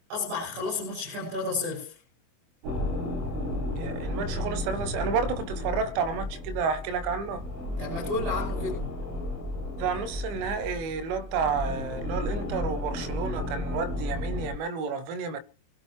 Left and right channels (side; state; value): left; late; 24 ms